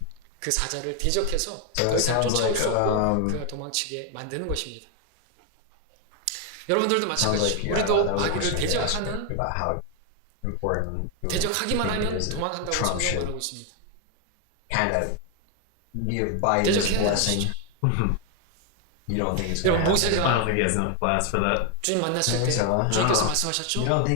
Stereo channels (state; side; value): different; both; correlation 0.01